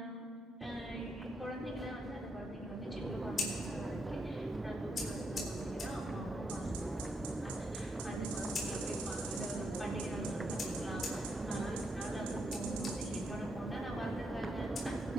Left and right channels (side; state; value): both; normal; correlation 0.79